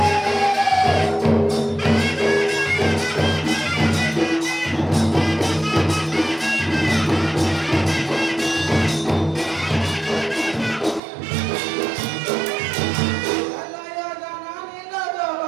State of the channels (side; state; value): left; drops out; at 11.0 s